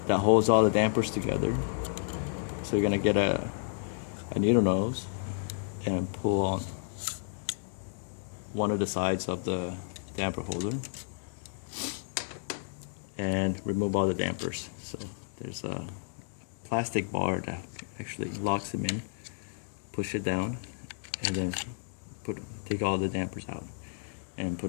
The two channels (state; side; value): silent; right; digital silence